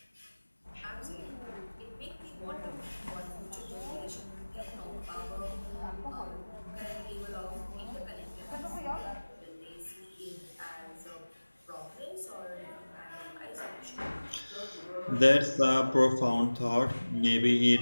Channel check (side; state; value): both; inverted; correlation -1.00